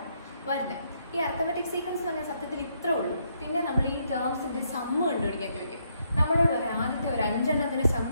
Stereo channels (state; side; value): inverted; both; correlation -0.74